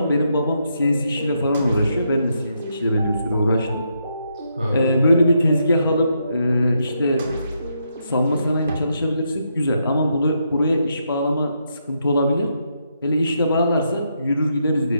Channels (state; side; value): inverted; both; correlation -0.79